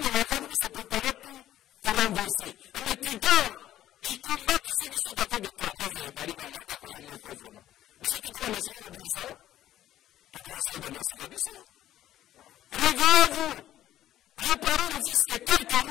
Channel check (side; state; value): right; quieter; 12.8 dB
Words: l'argent pour se préparer pour te renverser. Mais tu dors, ils combattent ceux qui sont avec toi. Mais hey, Badi Bangata, Koyomoko, vraiment. Biso tout le monde a ce qu'on dit ça. Réveillez-vous, réparez ne fût-ce que quelques